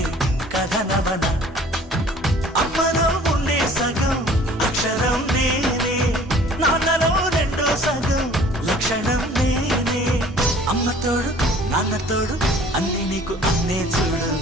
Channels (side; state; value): both; normal; correlation 0.51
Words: కథనవన అమ్మలో ఉండే సగం అక్షరం నేనే నాన్నలో రెండో సగం లక్షణం నేనే అమ్మ తోడు నాన్న తోడు అన్ని నీకు అన్నే చూడు